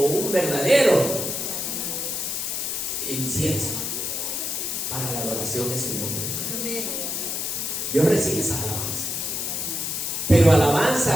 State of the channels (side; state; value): left; noise; hiss, 2 dB below the sound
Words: un verdadero incienso para la adoración de su nombre. Dios recibe esas alabanzas. Pero